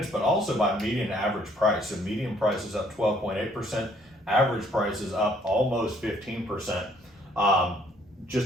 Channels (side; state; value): both; normal; correlation 0.63